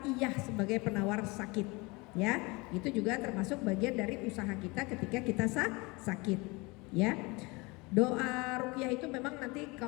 sebagai penawar sakit. Ya, itu juga termasuk bagian dari usaha kita ketika kita sakit. Ya. Doa ruqyah itu memang nanti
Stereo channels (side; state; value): right; quieter; 25.6 dB